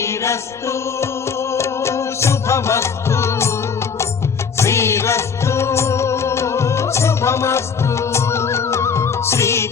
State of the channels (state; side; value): quieter; right; 6.1 dB